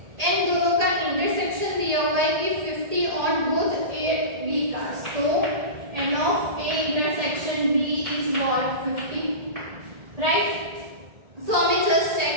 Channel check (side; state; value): left; late; 1.8 ms